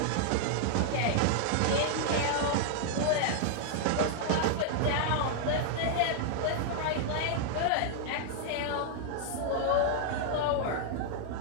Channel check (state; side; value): different; both; correlation -0.01